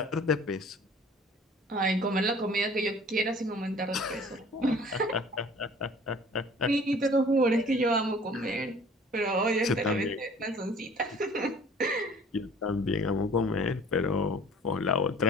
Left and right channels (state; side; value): normal; both; correlation 0.49